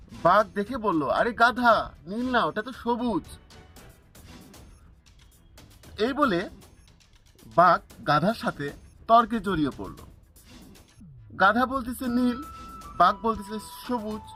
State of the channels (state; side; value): identical; both; correlation 1.00